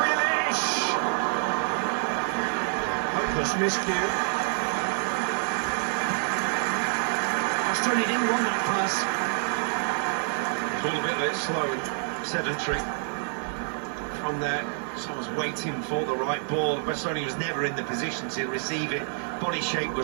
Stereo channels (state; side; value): silent; left; digital silence